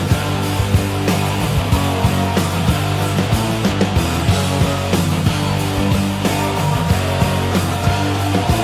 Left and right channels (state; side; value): identical; both; correlation 1.00